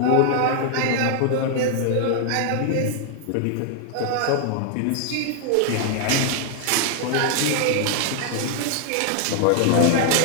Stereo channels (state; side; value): different; both; correlation 0.00